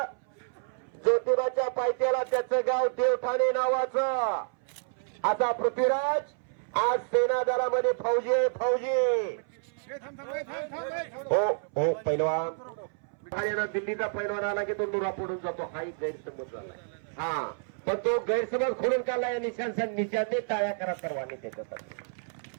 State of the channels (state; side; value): silent; left; 58 dB below the other